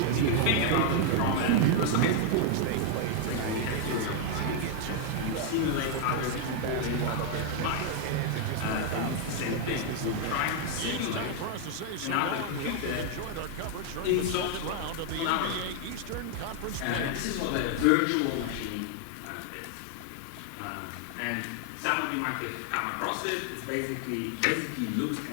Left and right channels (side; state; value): both; different; correlation 0.00